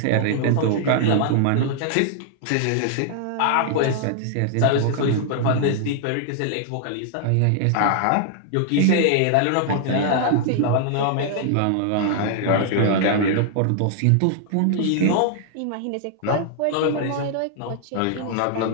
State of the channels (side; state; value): both; different; correlation 0.00